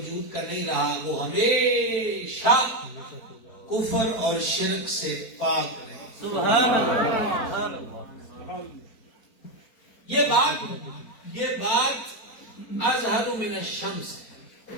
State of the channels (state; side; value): late; right; 4.4 ms